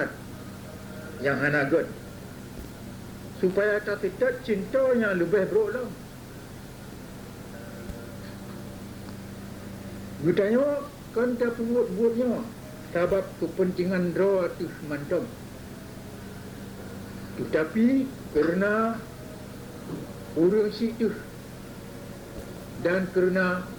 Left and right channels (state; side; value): identical; both; correlation 1.00